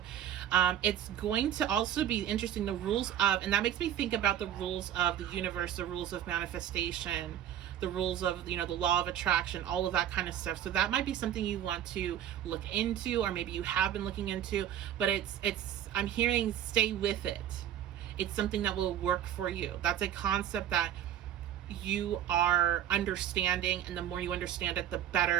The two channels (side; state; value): left; quieter; 10.9 dB